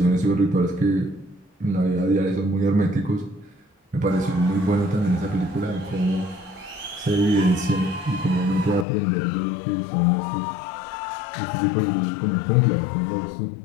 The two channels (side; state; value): right; drops out; at 8.8 s